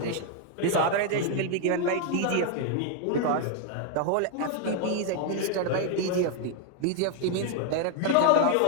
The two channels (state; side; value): different; both; correlation 0.00